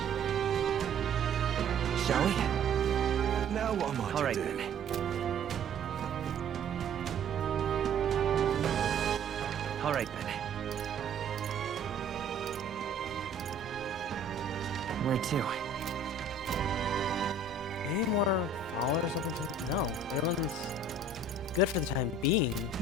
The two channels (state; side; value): quieter; left; 3.8 dB